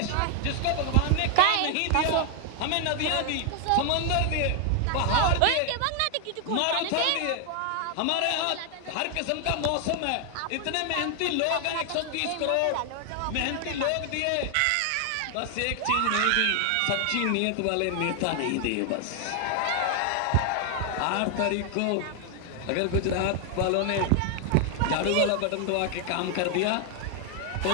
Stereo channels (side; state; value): both; different; correlation 0.00